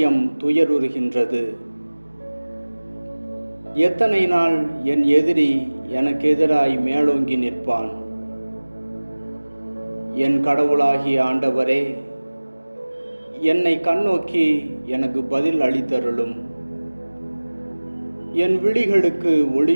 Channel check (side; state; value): both; inverted; correlation -1.00